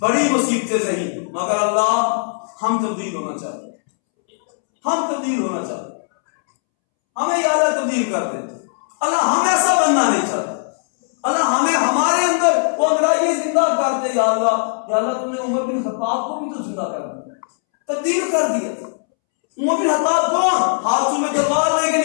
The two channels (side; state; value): right; silent; 67 dB below the other